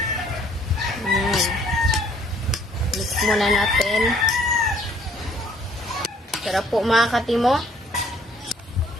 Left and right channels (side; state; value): both; normal; correlation 0.61